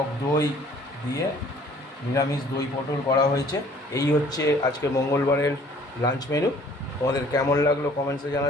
দই দিয়ে নিরামিষ দই পটল করা হয়েছে। এই হচ্ছে আজকে মঙ্গলবারের লাঞ্চ মেনু। তোমাদের কেমন লাগলো কমেন্টসে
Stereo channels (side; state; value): both; normal; correlation 0.55